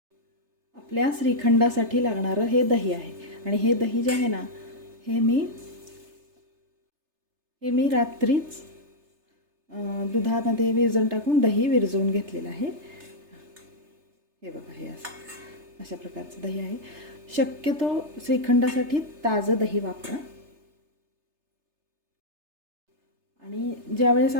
आपल्या श्रीखंडासाठी लागणारं हे दही आहे आणि हे दही जे आहे ना हे मी रात्रीच दुधामध्ये विरजण टाकून दही विरजवून घेतलेलं आहे. हे बघा, हे असं अशा प्रकारचं दही आहे. शक्यतो श्रीखंडासाठी ताजं दही वापरा. आणि ज्यावेळेस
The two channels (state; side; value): late; left; 3.3 ms